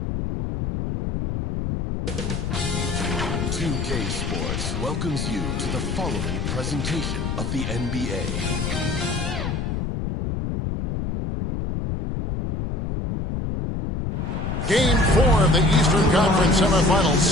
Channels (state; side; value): noise; left; rumble, 3 dB below the sound